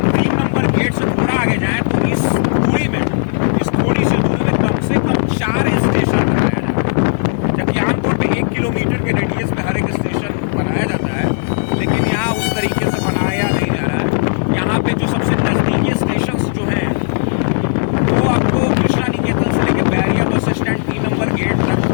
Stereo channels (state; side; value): silent; right; digital silence